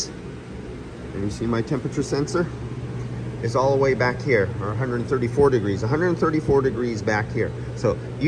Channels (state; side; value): identical; both; correlation 1.00